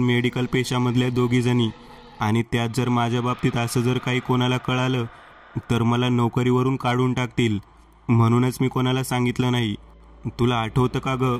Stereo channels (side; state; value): both; identical; correlation 1.00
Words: पेशामधल्या दोघी जणी, आणि त्यात जर माझ्या बाबतीत असं जर काही कोणाला कळालं तर मला नोकरीवरून काढून टाकतील, म्हणूनच मी कोणाला सांगितलं नाही। तुला आठवतं का ग